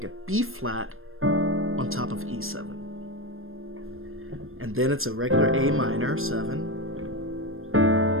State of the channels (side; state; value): left; late; 0.60 ms